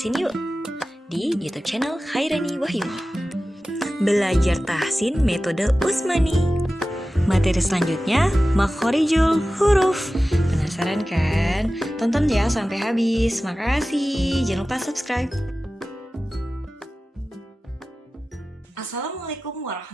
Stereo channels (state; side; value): normal; both; correlation 0.95